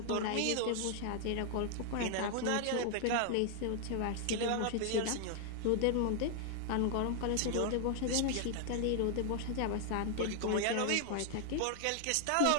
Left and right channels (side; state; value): both; different; correlation 0.00